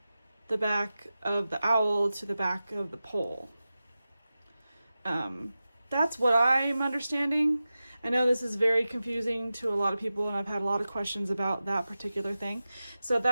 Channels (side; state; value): both; inverted; correlation -0.94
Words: the back of the owl to the back of the pole. That's what I'm understanding. I know this is very confusing to a lot of people and I've had a lot of questions about that particular thing. So